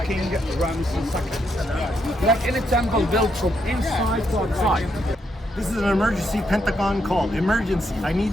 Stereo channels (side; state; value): both; normal; correlation 0.78